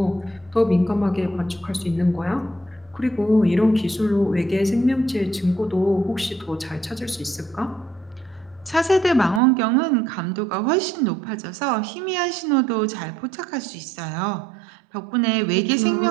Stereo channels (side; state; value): left; drops out; at 9.4 s